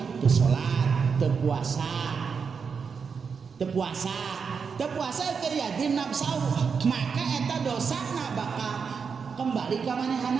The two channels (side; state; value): left; quieter; 5.9 dB